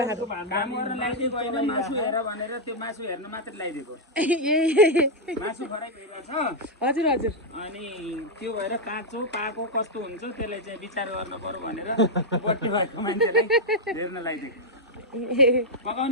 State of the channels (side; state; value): both; normal; correlation -0.04